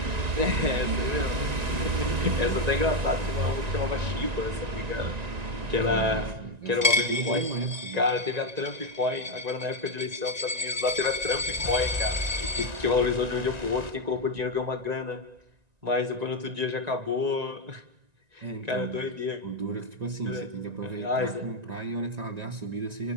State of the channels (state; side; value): late; left; 1.9 ms